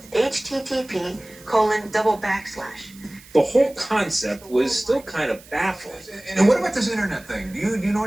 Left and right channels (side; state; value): right; noise; hiss, 22 dB below the sound